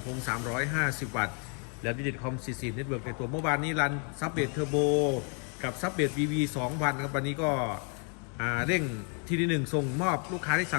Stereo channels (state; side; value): quieter; right; 39.1 dB